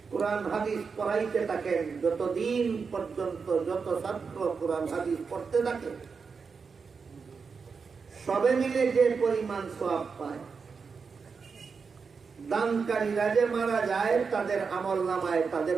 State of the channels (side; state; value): left; quieter; 5.3 dB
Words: কোরআন হাদিস পড়াইতে থাকেন, যতদিন পর্যন্ত যত ছাত্র কোরআন হাদিস পড়তে থাকে, সবে মিলে যে পরিমাণ সওয়াব পায়, দানকারীরা যে মারা যায় তাদের আমলনামায় তাদের